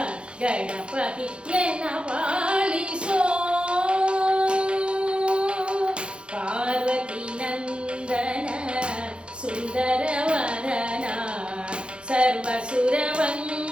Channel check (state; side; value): late; left; 0.056 ms